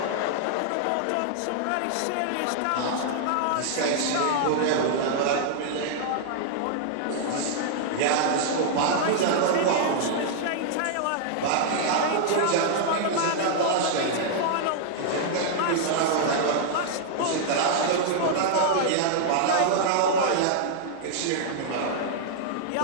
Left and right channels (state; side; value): different; both; correlation -0.01